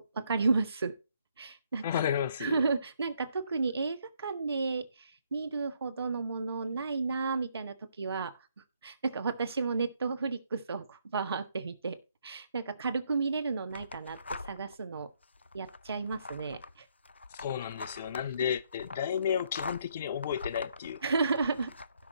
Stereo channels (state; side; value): inverted; both; correlation -0.71